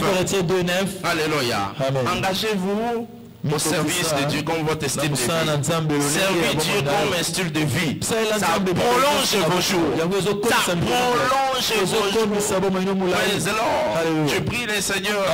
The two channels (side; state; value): both; identical; correlation 1.00